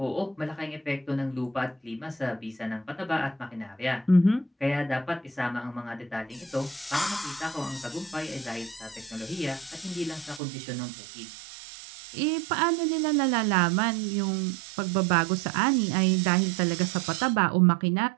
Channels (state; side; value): drops out; left; at 10.4 s